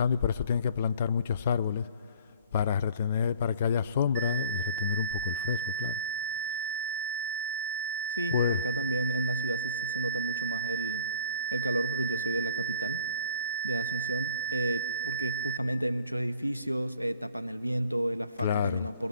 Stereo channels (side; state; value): both; inverted; correlation -0.51